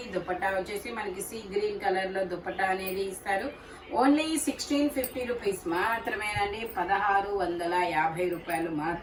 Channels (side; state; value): both; identical; correlation 1.00